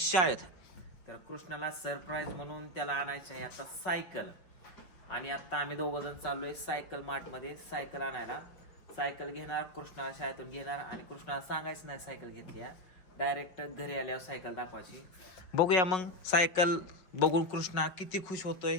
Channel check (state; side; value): late; right; 5.4 ms